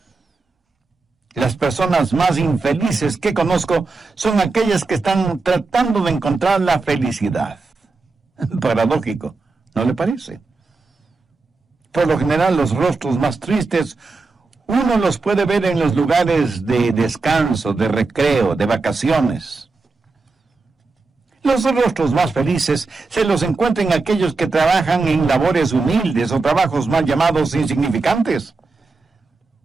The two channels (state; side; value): quieter; left; 3.9 dB